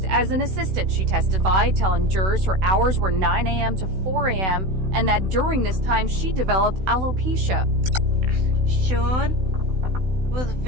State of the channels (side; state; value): left; late; 16 ms